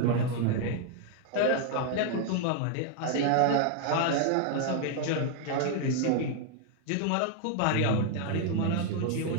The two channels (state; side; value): different; both; correlation 0.00